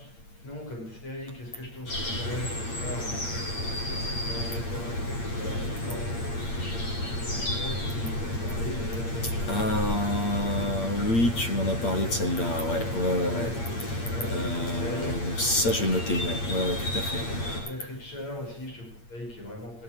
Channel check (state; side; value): late; right; 8.7 ms